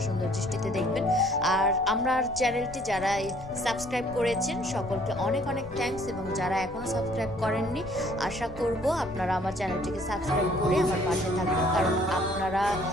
সুন্দর দৃষ্টিতে দেখবেন। আর আমার চ্যানেলটি যারা সাবস্ক্রাইব করেছেন সকলকে অনেক অনেক থ্যাঙ্কস, এবং যারা এখনও সাবস্ক্রাইব করেননি আশা করব আপনারা আমার চ্যানেলটিকে সাবস্ক্রাইব করে আমার পাশে থাকবেন, কারণ আপনারা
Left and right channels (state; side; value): noise; left; rumble, 16 dB below the sound